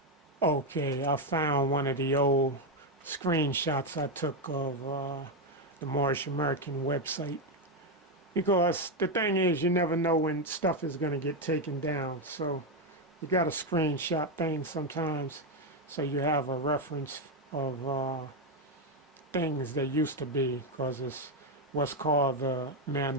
Okay, I found one of the old screenshots I took of the Moorish American website. Because the thing is, you never know when stuff is going to get taken down. So you got to screenshot things sometimes so you have a reference of things that used to be, because it's what's called the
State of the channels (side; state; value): both; normal; correlation 0.05